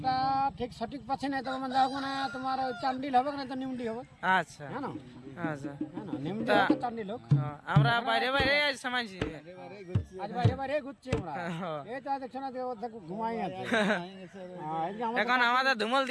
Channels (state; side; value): identical; both; correlation 1.00